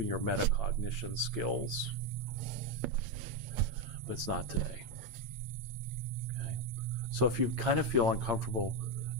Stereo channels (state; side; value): late; left; 8.7 ms